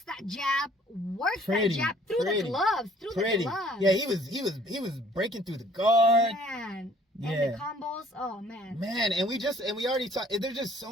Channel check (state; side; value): normal; both; correlation 0.57